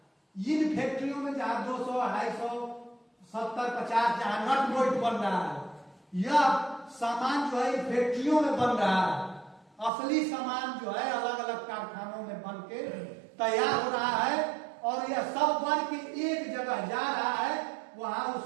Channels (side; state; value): left; drops out; at 9.9 s